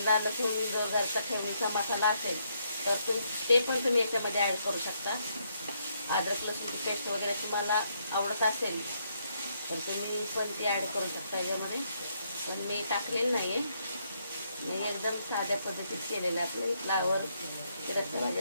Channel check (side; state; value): both; inverted; correlation -0.75